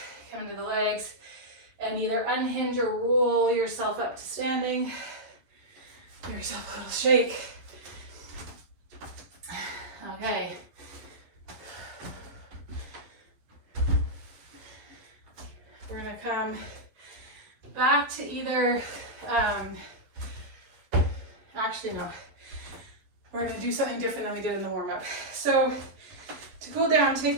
come into the legs. And either unhinge or roll yourself up to standing. Give yourself a little shake. Okay. We're gonna come back to either, actually no, we're gonna do something different than we did in the warm-up. So to go down,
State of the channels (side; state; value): left; late; 11 ms